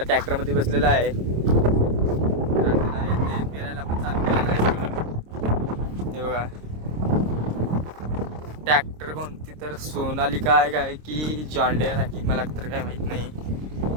ट्रॅक्टरमध्ये बसलेलं आहे. तर त्यांना ते पेरायला पण चालू केलेलं आहे सगळं. हे बघा ट्रॅक्टर कोणती तर सोनालिका आहे काय की जॉन डियर आहे मला तर काय माहित नाही.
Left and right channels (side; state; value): left; late; 26 ms